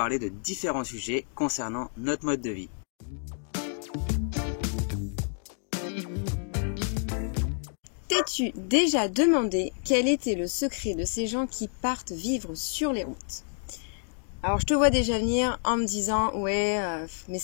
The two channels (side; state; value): right; silent; 59 dB below the other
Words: de différents sujets concernant notre mode de vie. T'es-tu déjà demandé quel était le secret de ces gens qui partent vivre sur les routes? Alors je te vois déjà venir en me disant ouais mais